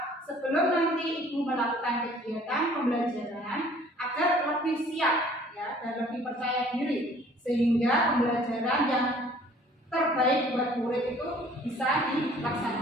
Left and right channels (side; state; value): both; normal; correlation 0.54